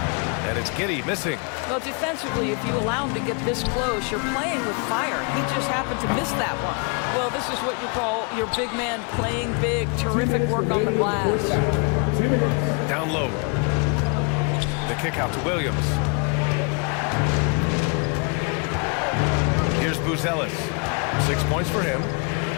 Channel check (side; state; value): right; quieter; 35.3 dB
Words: And it's Giddey missing. Well, defensively, if you allow him to get this close, you're playing with fire. He just happened to miss that one. Well, this is what you call your big man playing big. Terrific work on the glass. Down low. The kick out to Williams. Here's Buzelis. 6 points for him.